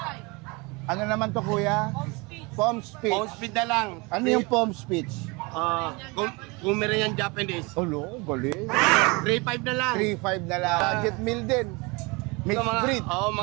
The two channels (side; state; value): left; quieter; 27.1 dB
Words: Ano naman to, kuya? Pom speech. Phone speed na lang. Ano yung pom speech? Pomeranian Japanese. Olo, galing. 3-5 na lang. 3'5 na lang. Jet meal din. Mixed Ito, breed. Oo,